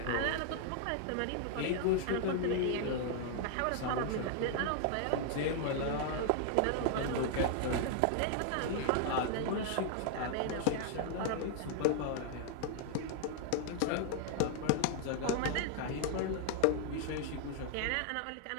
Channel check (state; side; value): different; both; correlation 0.00